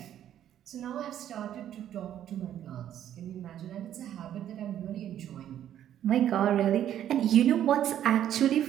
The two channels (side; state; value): left; quieter; 10.9 dB